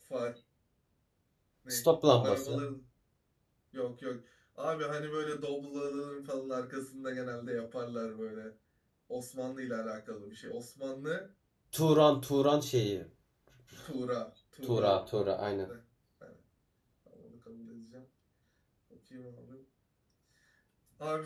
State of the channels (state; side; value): identical; both; correlation 1.00